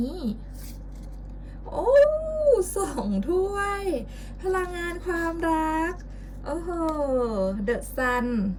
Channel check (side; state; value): both; identical; correlation 1.00